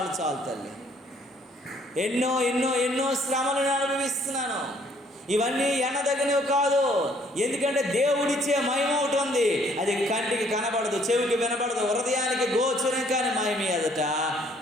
చాలు తల్లి, ఎన్నో ఎన్నో ఎన్నో శ్రమలు నేను అనుభవిస్తున్నాను. ఇవన్నీ ఎన్నదగినవి కాదు. ఎందుకంటే దేవుడిచ్చే మహిమ ఒకటి ఉంది, అది కంటికి కనబడదు, చెవికి వినబడదు, హృదయానికి గోచరం కాని మహిమ ఎదుట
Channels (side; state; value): both; normal; correlation 0.62